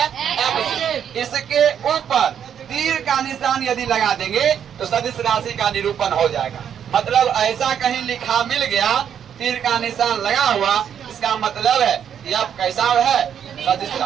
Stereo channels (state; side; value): quieter; left; 8.7 dB